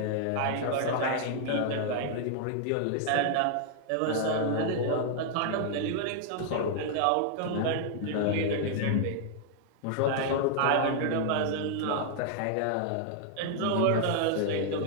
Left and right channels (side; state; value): both; different; correlation 0.00